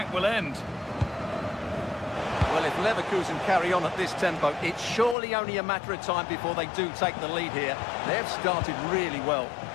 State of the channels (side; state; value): right; drops out; at 5.2 s